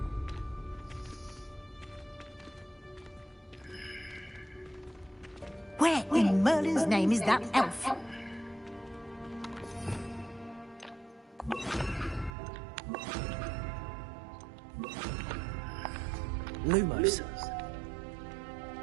Where in Merlin's name is that elf? Lumos.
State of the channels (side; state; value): left; drops out; at 12.4 s